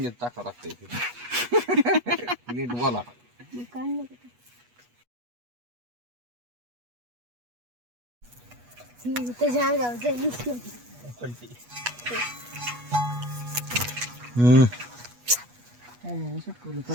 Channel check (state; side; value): late; left; 8.3 ms